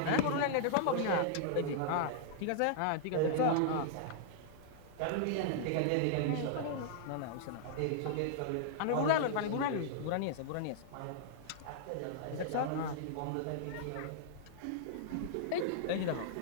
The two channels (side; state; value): both; different; correlation -0.01